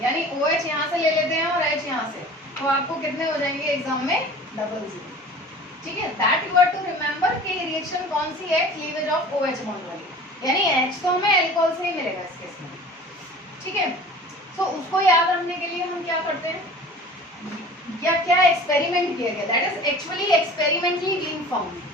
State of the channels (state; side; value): normal; both; correlation 0.42